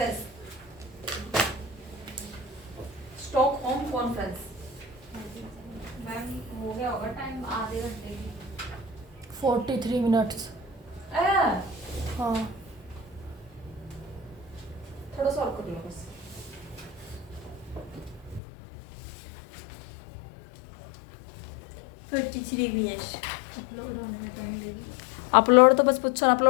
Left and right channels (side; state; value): right; drops out; at 18.4 s